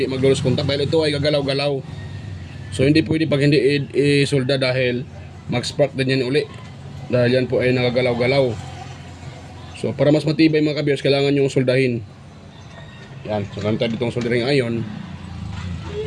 mag-lose contact, dahil ito ay gagalaw-galaw. So hindi pwede pag hindi isolda dahil mag-spark din yan uli. Dahil yan po ay nagagalaw-galaw. So para mas matibay mga ka-viewers, kailangan yung soldahin. Yan, so gamit tayo ditong soldering iron.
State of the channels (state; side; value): identical; both; correlation 1.00